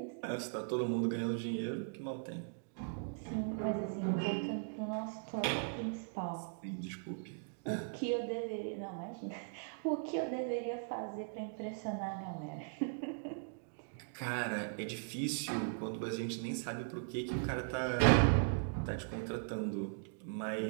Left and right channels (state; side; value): silent; left; digital silence